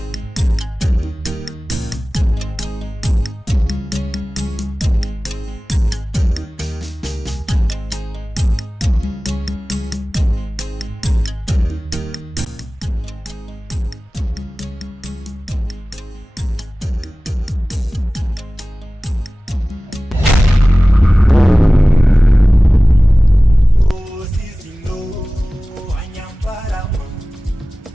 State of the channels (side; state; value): both; normal; correlation 0.97